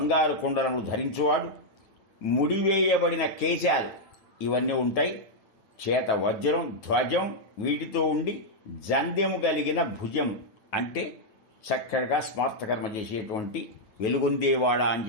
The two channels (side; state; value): right; late; 9.3 ms